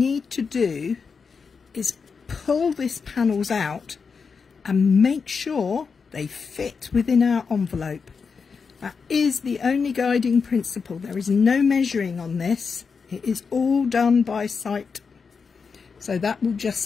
to do is pull these panels out and make sure they fit within our envelope. That is the only guiding principle. There is no measuring on this. It is all done by sight. So that will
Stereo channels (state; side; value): quieter; right; 5.4 dB